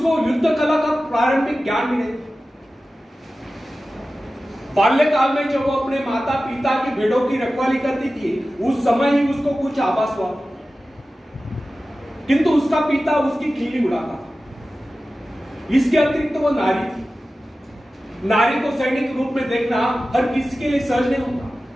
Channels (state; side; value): normal; both; correlation 0.95